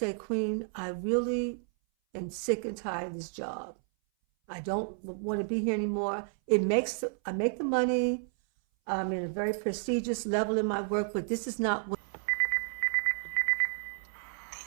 Queen, I really am sick and tired of this job. I don't want to be here anymore. I make the money. I'm in a very prestigious level in my work, but this is not what The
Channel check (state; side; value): silent; left; 57 dB below the other